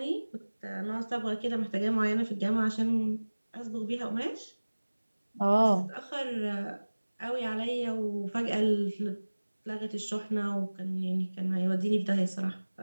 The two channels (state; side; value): inverted; both; correlation -1.00